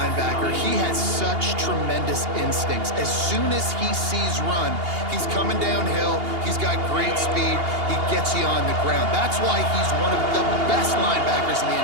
He has such tremendous instincts. As soon as he sees run, he's coming downhill. He's got great speed. He gets you on the ground. That's why he's one of the best linebackers in the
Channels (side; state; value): left; late; 2.8 ms